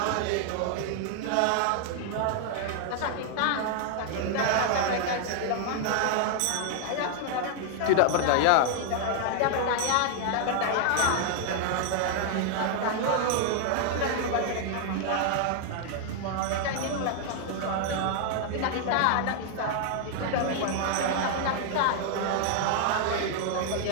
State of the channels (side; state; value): both; different; correlation 0.00